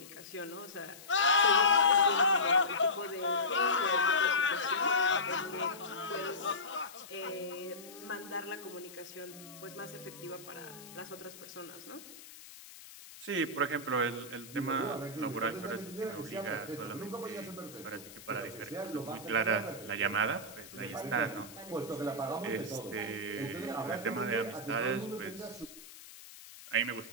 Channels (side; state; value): left; noise; hiss, 17 dB below the sound